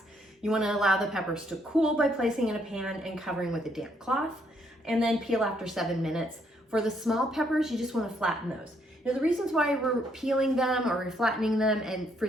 You want to allow the peppers to cool by placing in a pan and covering with a damp cloth, and then peel after 7 minutes. For the small peppers, you just want to flatten those. Now the reasons why we're peeling them or we're flattening them, and for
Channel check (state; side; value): normal; both; correlation 0.71